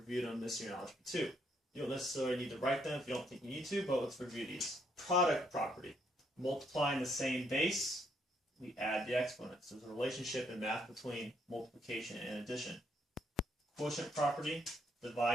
them this year in Algebra 2. You don't necessarily need to write them if you don't think you need to, but let's review these. Product property. Multiplying the same base, we add the exponents. There's a relationship in math between multiplication and addition. Quotient property.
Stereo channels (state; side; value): normal; both; correlation 0.72